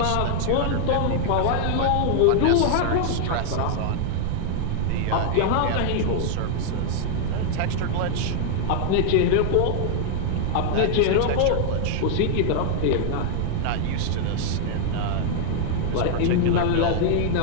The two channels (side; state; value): both; different; correlation -0.01